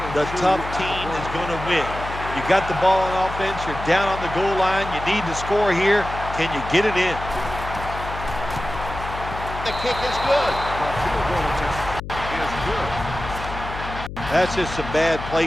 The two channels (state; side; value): noise; left; hum, 9 dB below the sound